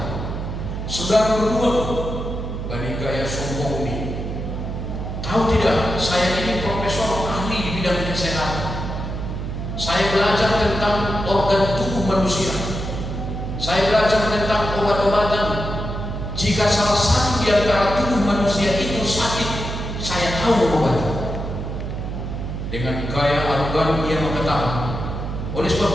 Saudara berdua bagi gaya sombong ini tahu tidak saya ini profesor ahli di bidang kesehatan. Saya belajar tentang organ tubuh manusia. Saya belajar tentang obat-obatan. Jika salah satu di antara tubuh manusia itu sakit, saya tahu obatnya. Dengan gaya arogan ia mengatakan, oleh sebab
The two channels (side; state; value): right; noise; hum, 5 dB below the sound